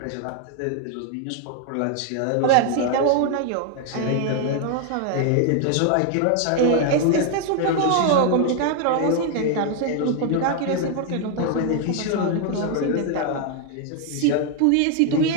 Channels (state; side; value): different; both; correlation 0.00